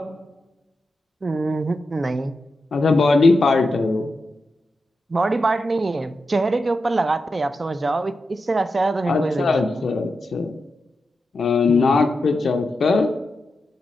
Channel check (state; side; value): normal; both; correlation 0.88